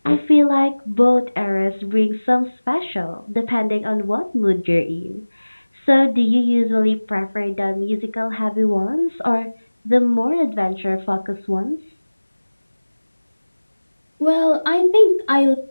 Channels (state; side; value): inverted; both; correlation -1.00